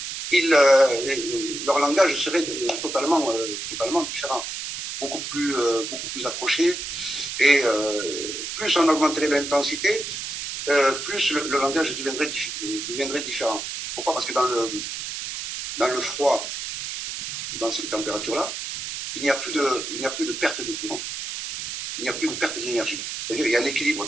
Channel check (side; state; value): right; noise; hiss, 6 dB below the sound